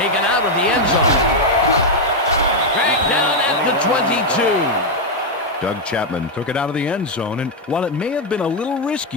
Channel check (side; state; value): both; normal; correlation 0.01